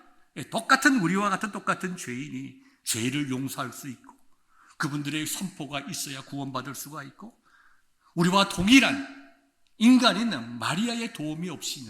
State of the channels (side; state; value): both; identical; correlation 1.00